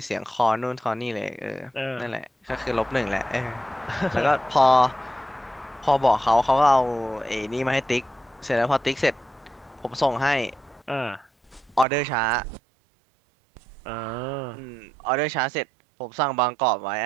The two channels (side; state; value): left; drops out; at 11.9 s